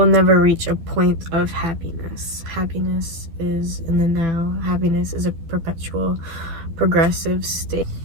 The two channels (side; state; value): left; late; 12 ms